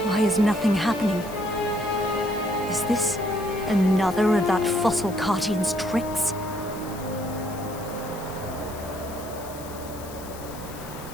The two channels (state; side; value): noise; left; hiss, 16 dB below the sound